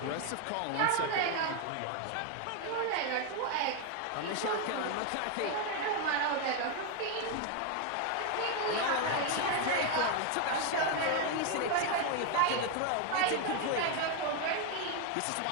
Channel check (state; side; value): different; both; correlation 0.01